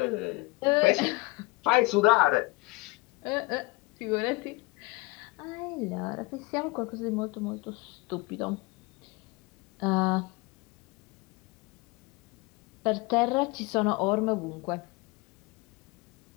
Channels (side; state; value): right; quieter; 23.5 dB